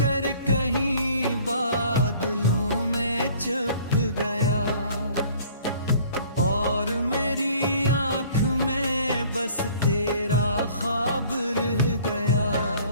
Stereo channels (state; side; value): inverted; both; correlation -0.53